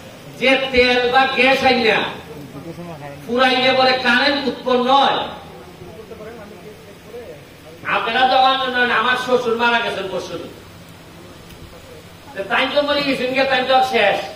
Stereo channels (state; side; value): identical; both; correlation 1.00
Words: যে তেল বা গ্যাস আইনা ফুরাইলে পরে কারেন্ট উৎপন্ন হয়। আপনারা যখন আমার শ্বশুর মারা গেছেন পরশু, তাই তো মরে গেছেন, তাই তো শেষ।